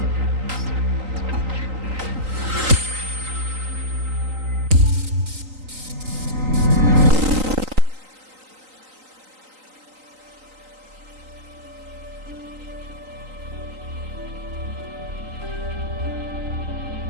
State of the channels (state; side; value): late; left; 3.9 ms